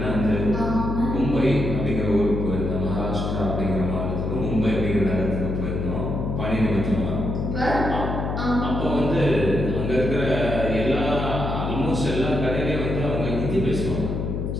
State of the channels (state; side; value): noise; left; hum, 2 dB below the sound